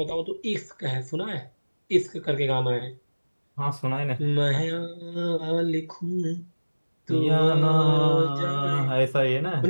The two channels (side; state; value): both; inverted; correlation -1.00